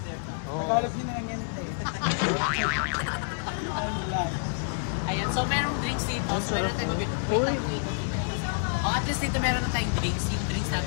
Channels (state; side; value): silent; right; 56 dB below the other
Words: it? Tagalog nyo na lang yan, te. Ano lang. Ayan, so merong drinks dito. So meron na tayong mabili. Wait lang po, ikot dito. Oh, at least dito meron na tayong drinks. Yung drinks